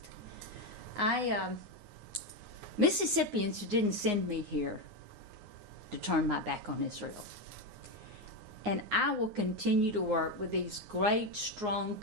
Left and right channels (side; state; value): left; late; 9.6 ms